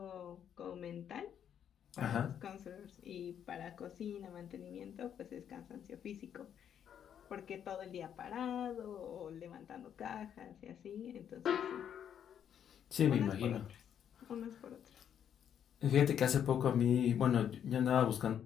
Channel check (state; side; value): quieter; right; 9.0 dB